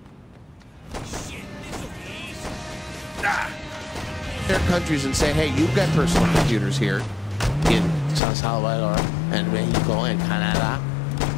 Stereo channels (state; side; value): drops out; right; at 8.2 s